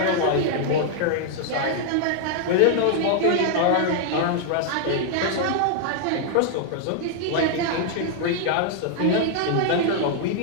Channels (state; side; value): different; both; correlation 0.00